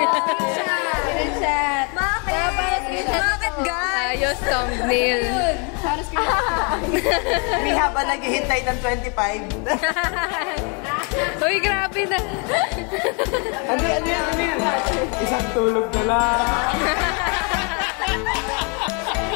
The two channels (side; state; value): right; quieter; 35.2 dB